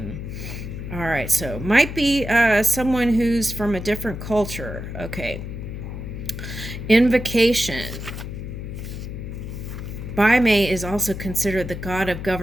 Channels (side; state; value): left; noise; hum, 8 dB below the sound